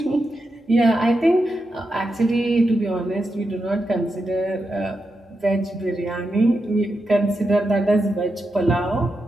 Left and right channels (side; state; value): both; normal; correlation 0.87